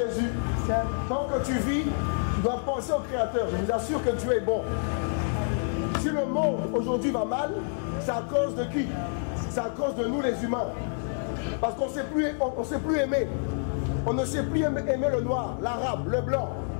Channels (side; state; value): right; silent; 59 dB below the other